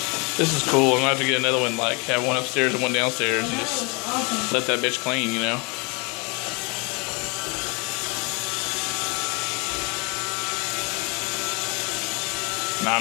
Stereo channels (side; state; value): right; quieter; 30.7 dB